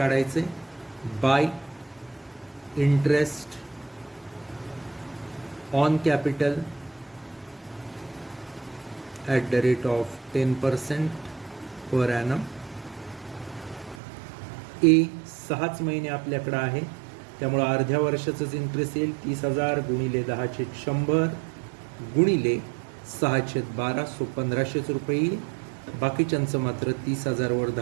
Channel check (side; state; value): left; drops out; at 14.0 s